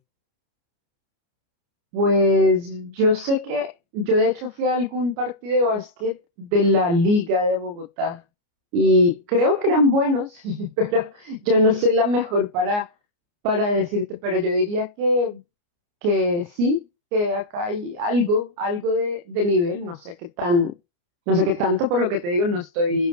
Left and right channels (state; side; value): late; left; 29 ms